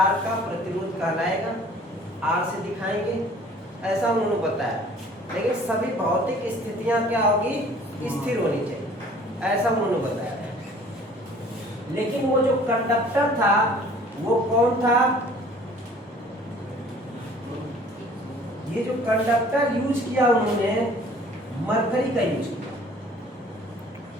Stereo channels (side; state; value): both; normal; correlation 0.52